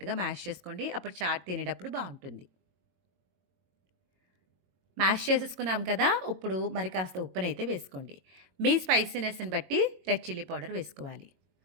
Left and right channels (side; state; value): left; late; 22 ms